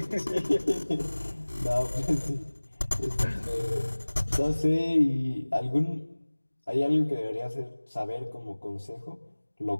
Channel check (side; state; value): both; inverted; correlation -1.00